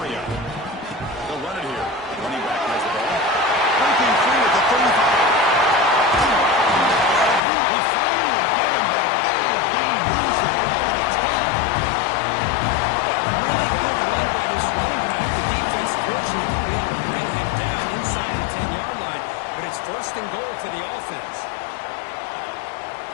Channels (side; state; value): right; drops out; at 7.4 s